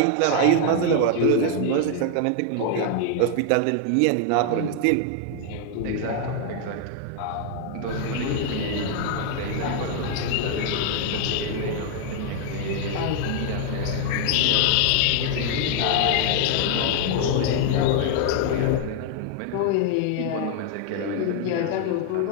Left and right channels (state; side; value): different; both; correlation 0.00